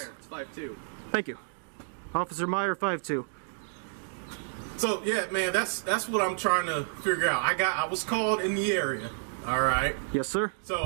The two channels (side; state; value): left; silent; digital silence